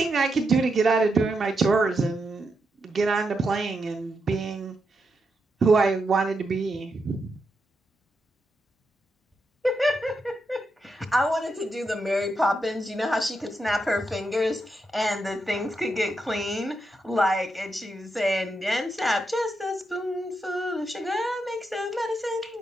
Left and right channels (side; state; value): both; normal; correlation 0.84